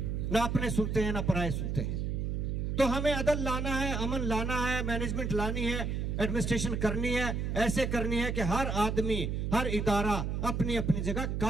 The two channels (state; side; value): noise; right; hum, 1 dB below the sound